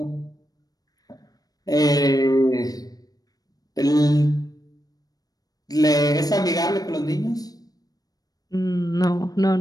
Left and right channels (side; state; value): right; late; 0.18 ms